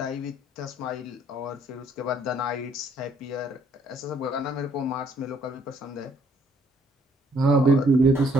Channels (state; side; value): normal; both; correlation 0.65